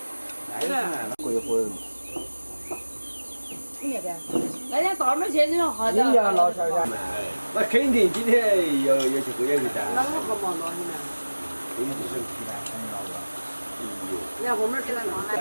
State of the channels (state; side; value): inverted; both; correlation -1.00